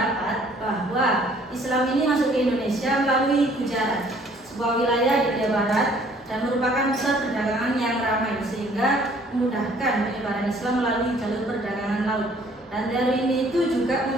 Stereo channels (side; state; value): both; normal; correlation 0.58